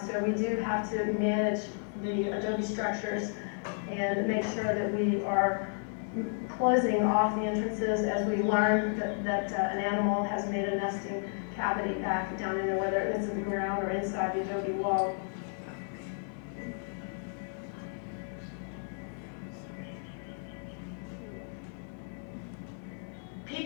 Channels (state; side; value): silent; right; 56 dB below the other